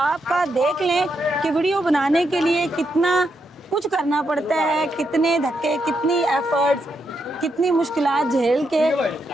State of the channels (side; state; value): both; normal; correlation 0.81